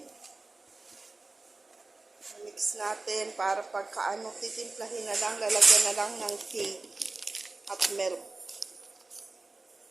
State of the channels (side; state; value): left; quieter; 3.4 dB